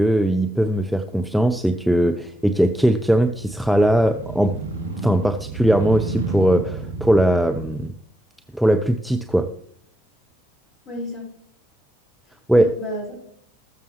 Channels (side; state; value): both; normal; correlation 0.86